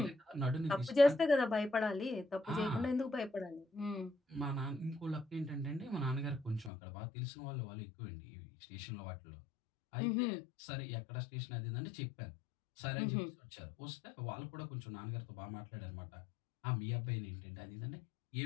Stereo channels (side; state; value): right; drops out; at 6.7 s